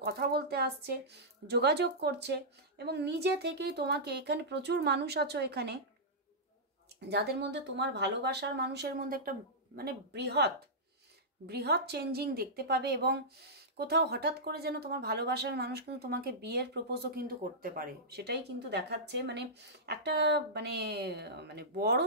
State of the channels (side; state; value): both; normal; correlation -0.12